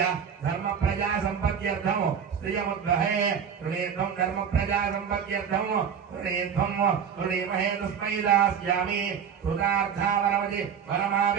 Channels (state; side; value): quieter; left; 7.6 dB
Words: धर्म प्रजा संपत्त्यर्थं स्त्रियमुद्वहे ऋणेध्वं धर्म प्रजा संपत्त्यर्थं ऋणीमहे तस्मै दास्यामि कृतार्थावरमति